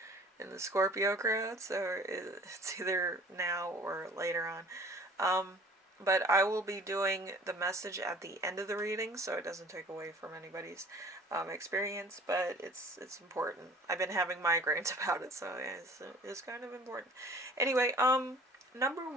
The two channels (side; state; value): both; normal; correlation 0.49